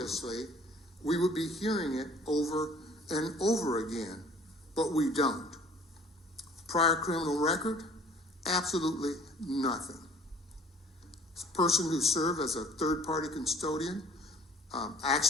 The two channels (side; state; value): both; normal; correlation 0.52